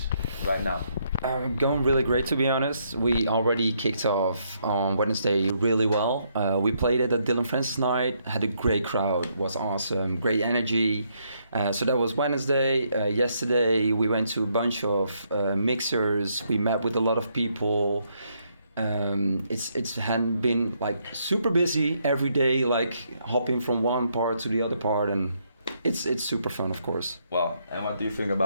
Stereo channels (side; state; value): both; inverted; correlation -0.74